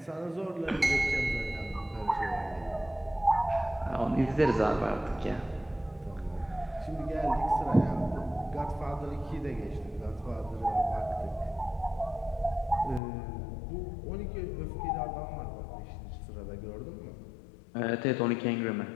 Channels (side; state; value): right; drops out; at 13.0 s